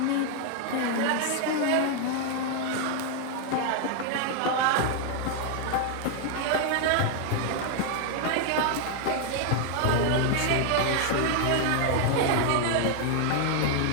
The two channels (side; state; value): both; different; correlation 0.00